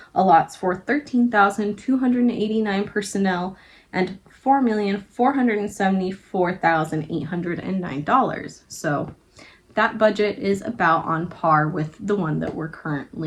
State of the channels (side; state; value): both; identical; correlation 1.00